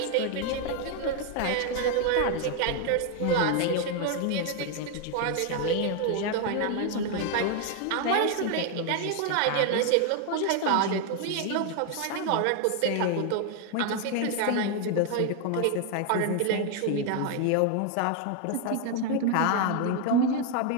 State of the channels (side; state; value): both; different; correlation 0.01